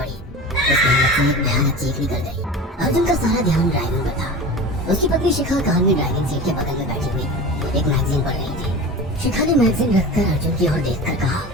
उसके अंदर से एक भयानक चीख निकल गई। अर्जुन का सारा ध्यान ड्राइविंग पर था। उसकी पत्नी शिखा कार में ड्राइविंग सीट के बगल में बैठी हुई एक मैगजीन पढ़ रही थी। शिखा ने मैगजीन रखकर अर्जुन की ओर देखकर कहा,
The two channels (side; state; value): both; normal; correlation 0.33